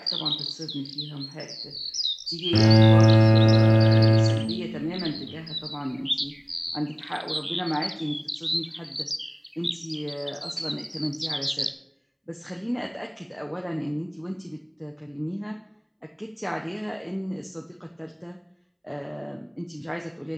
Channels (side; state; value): both; identical; correlation 1.00